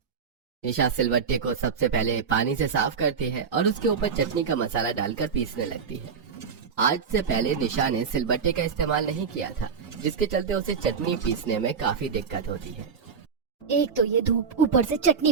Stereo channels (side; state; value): left; quieter; 6.1 dB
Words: निशा सिलबट्टे को सबसे पहले पानी से साफ करती है और उसके ऊपर चटनी का मसाला डालकर पीसने लगती है। आज से पहले निशा ने सिलबट्टे का इस्तेमाल नहीं किया था, जिसके चलते उसे चटनी पीसने में काफी दिक्कत होती है। एक तो ये धूप, ऊपर से